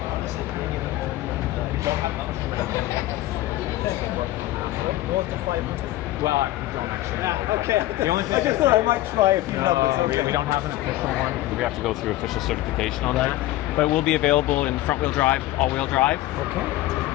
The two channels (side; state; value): right; quieter; 16.2 dB